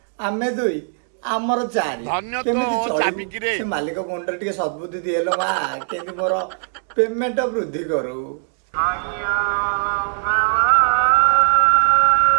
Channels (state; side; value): silent; left; digital silence